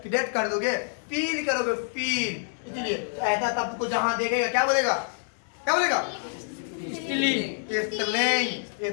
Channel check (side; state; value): right; silent; 60 dB below the other